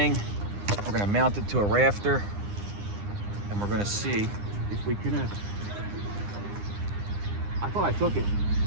We're gonna mount it to a rafter, and we're gonna see if we can. I thought I took it.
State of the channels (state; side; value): late; left; 9.8 ms